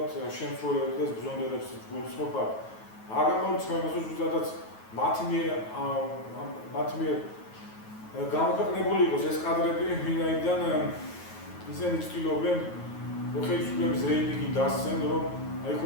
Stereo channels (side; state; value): right; late; 9.3 ms